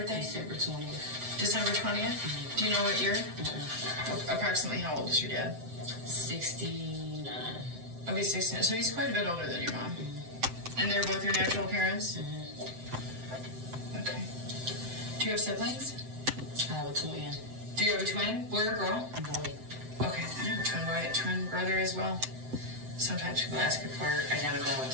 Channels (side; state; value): left; late; 7.8 ms